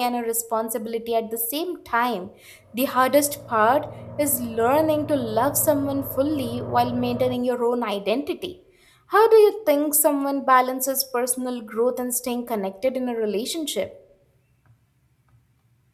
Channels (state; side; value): identical; both; correlation 1.00